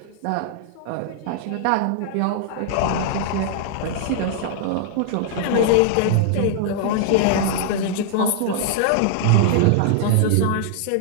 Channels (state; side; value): different; both; correlation -0.01